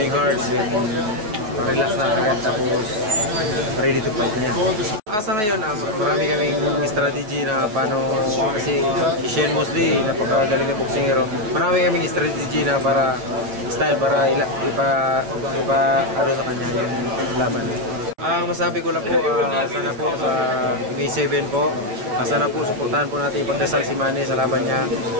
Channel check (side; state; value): left; late; 9.3 ms